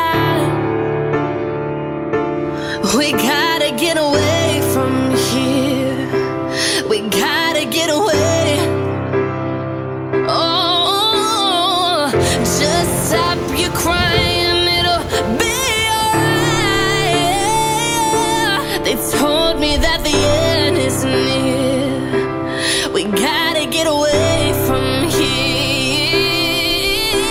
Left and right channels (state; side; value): identical; both; correlation 1.00